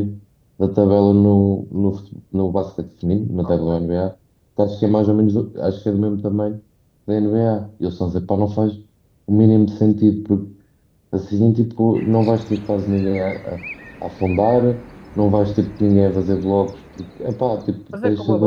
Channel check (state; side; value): identical; both; correlation 1.00